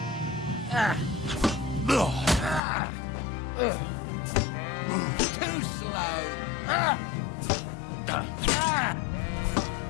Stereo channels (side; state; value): right; drops out; at 2.6 s